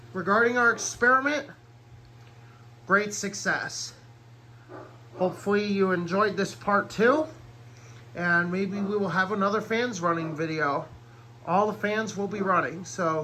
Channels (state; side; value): identical; both; correlation 1.00